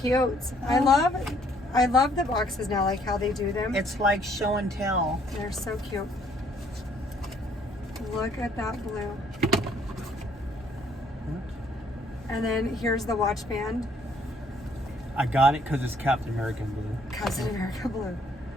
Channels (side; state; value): both; normal; correlation 0.64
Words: I love the boxes now, like how they do them. It's like show and tell. They're so cute. Look at that blue. And then here's the watch band. I got it because it's Captain American blue. Captain America blue.